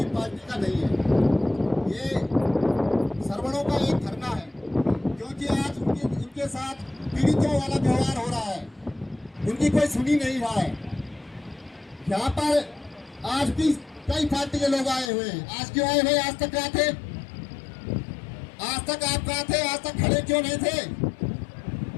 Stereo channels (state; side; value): drops out; right; at 15.1 s